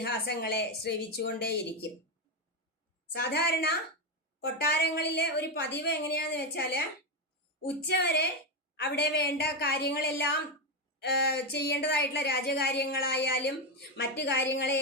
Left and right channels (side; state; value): both; normal; correlation 0.09